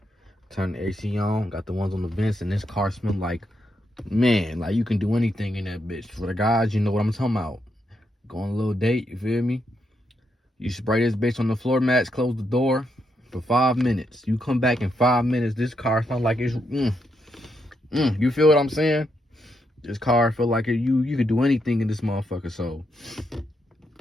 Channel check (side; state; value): both; normal; correlation 0.80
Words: turn the AC on, got the ones on the vents, and this car smell like, man, like you can do anything in that bitch. For the guys, you know what I'm talking about. Go on a little date, you feel me? You spray this bitch on the floor mats, close the door for 5 minutes. You come back in 5 minutes, this car smells like it's, you feel what I'm saying? This car feel like you could do anything in this motherfucker. So,